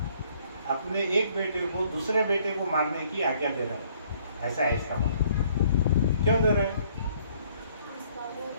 अपने एक बेटे को दूसरे बेटे को मारने की आज्ञा दे रहा है, ऐसा है इसका मतलब। क्यों दे रहे हैं?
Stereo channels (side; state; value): both; inverted; correlation -0.62